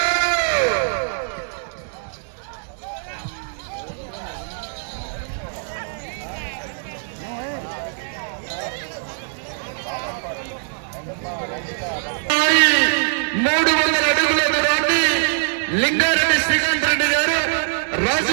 లింగారెడ్డి శ్రీకాంత్ రెడ్డి గారు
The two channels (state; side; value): silent; left; digital silence